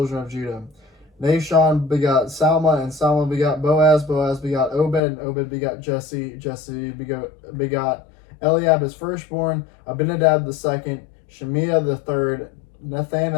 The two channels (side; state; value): right; drops out; at 5.0 s